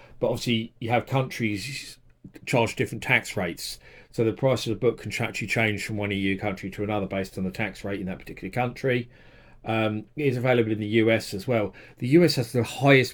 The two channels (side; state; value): both; identical; correlation 1.00